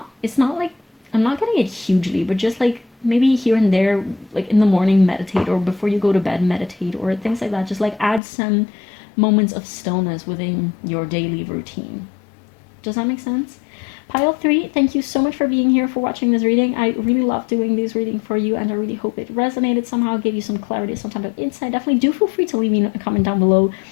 It's not like, I'm not getting it hugely, but just like maybe here and there, like in the morning meditate, or before you go to bed meditate, or things like that. Just like add some moments of stillness within your daily routine. Does that make sense? Pile 3, thank you so much for being here, for watching this reading. I really love doing this reading for you, and I really hope it resonated somehow, gave you some clarity, some type of insight. Definitely do feel free to leave me a comment down below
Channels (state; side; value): drops out; right; at 8.2 s